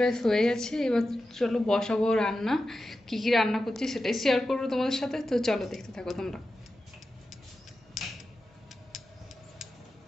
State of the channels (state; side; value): normal; both; correlation 0.92